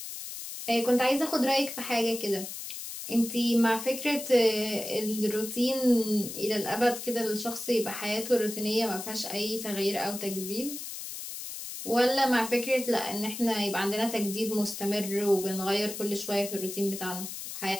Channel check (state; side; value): noise; left; hiss, 8 dB below the sound